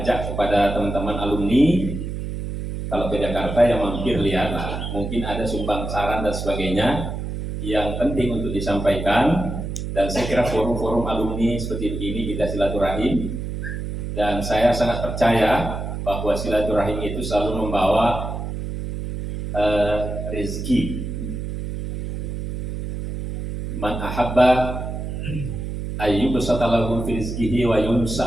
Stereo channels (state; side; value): noise; right; hum, 5 dB below the sound